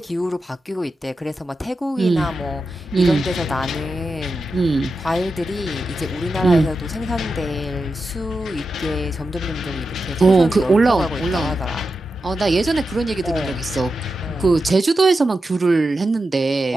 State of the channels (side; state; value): both; normal; correlation 0.90